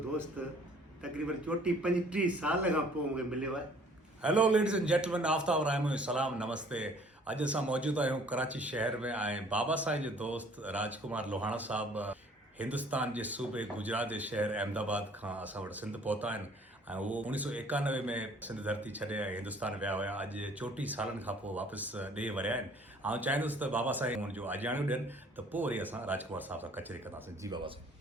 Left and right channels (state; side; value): normal; both; correlation 0.56